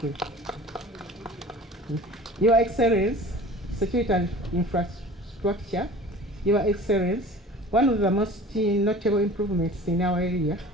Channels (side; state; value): both; normal; correlation 0.42